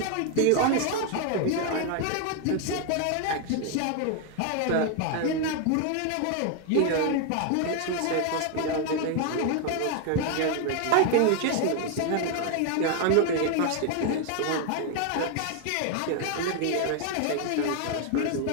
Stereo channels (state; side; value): different; both; correlation 0.00